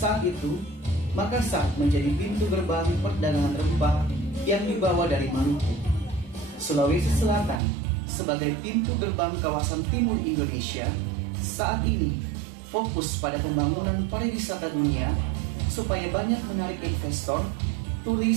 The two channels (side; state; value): left; drops out; at 7.6 s